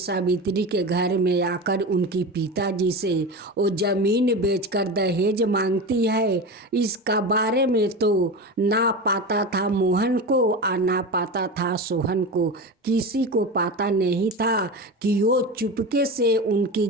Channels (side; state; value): both; normal; correlation 0.25